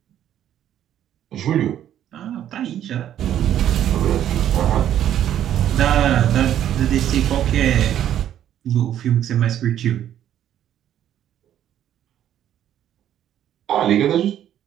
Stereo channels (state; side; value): quieter; left; 10.9 dB